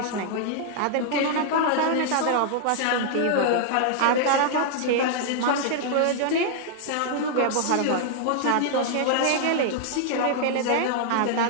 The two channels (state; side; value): different; both; correlation -0.01